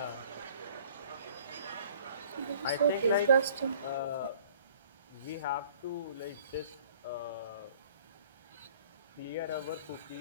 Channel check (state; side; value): inverted; both; correlation -0.54